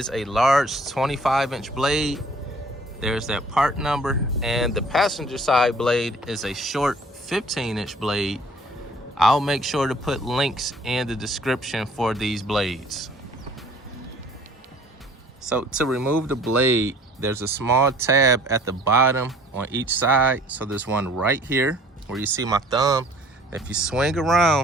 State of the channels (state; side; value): normal; both; correlation 0.53